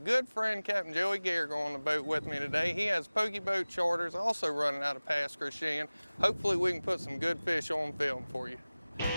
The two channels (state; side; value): inverted; both; correlation -0.99